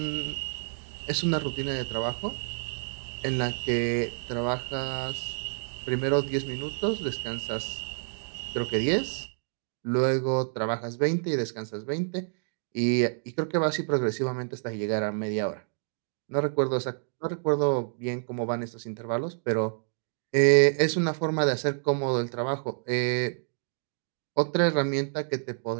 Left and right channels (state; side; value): silent; left; digital silence